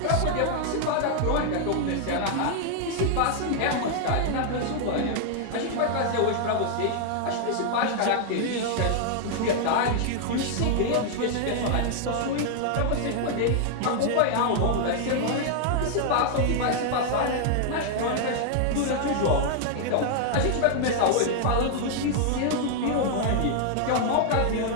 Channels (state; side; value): different; both; correlation -0.01